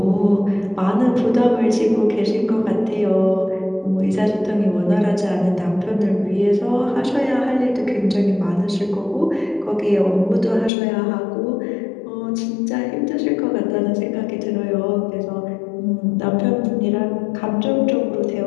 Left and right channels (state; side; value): drops out; right; at 10.7 s